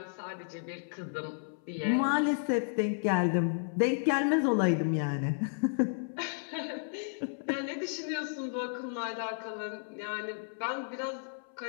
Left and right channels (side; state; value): right; silent; 56 dB below the other